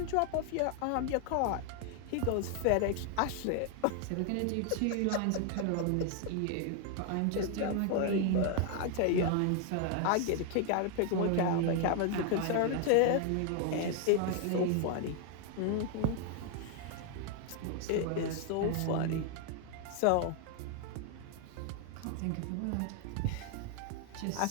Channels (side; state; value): both; different; correlation 0.00